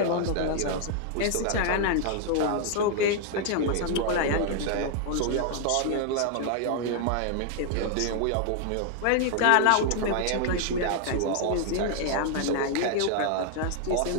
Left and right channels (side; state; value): both; different; correlation 0.00